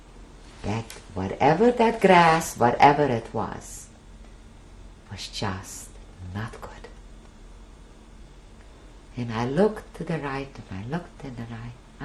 That whatever that grass, whatever it was just not good. And I looked to the right and I looked to the right.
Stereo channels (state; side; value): identical; both; correlation 1.00